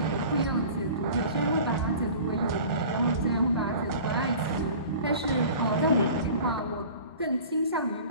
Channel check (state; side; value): inverted; both; correlation -0.42